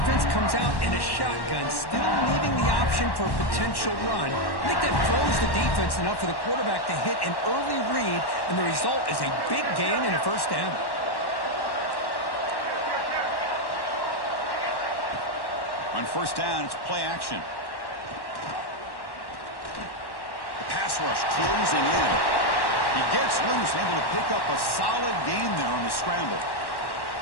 comes out in a shotgun, still leaving the option for a potential run. I think that throws the defense enough for the quarterback to hit an early read, and the result is a big gain and a first down. On first down, it's play action. The pass rush closing in. He gets loose, able to pick up a solid gain there on the scramble.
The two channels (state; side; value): late; right; 1.1 ms